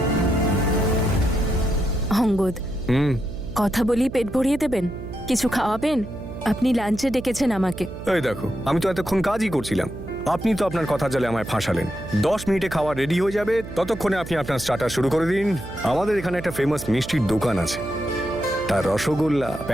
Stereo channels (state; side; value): noise; right; hum, 11 dB below the sound